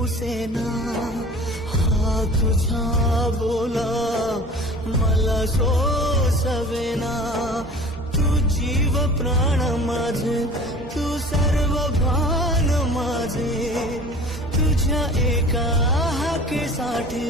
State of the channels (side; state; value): both; normal; correlation 0.43